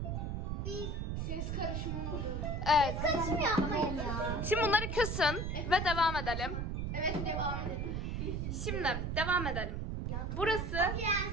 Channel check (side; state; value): right; noise; rumble, 2 dB below the sound